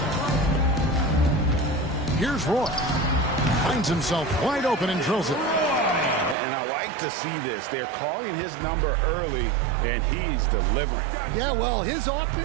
Here's Roy. Finds himself wide open and drills it. And I like to see this. They're calling his number early, and he's delivering. Yeah, well, his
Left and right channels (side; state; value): left; drops out; at 6.4 s